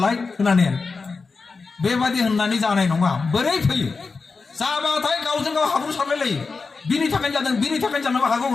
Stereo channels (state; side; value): quieter; right; 4.4 dB